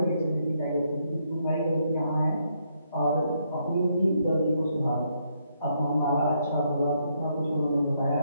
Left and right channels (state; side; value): inverted; both; correlation -0.75